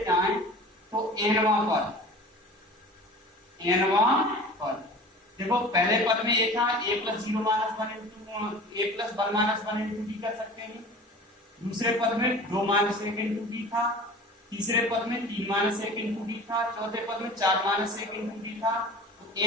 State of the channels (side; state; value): both; normal; correlation 0.40